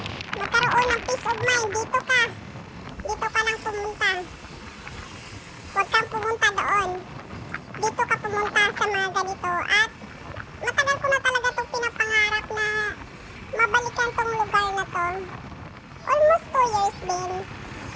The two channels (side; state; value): both; identical; correlation 1.00